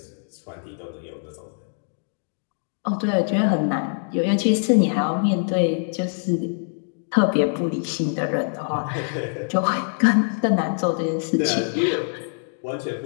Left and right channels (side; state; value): right; silent; digital silence